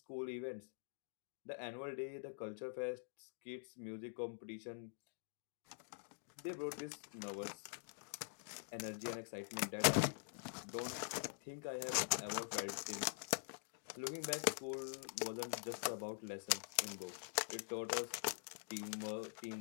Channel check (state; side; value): silent; right; digital silence